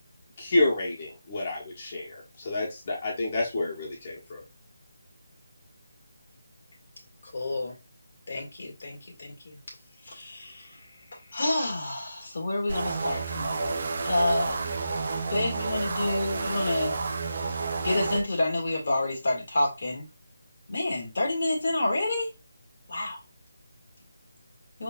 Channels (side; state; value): both; inverted; correlation -0.89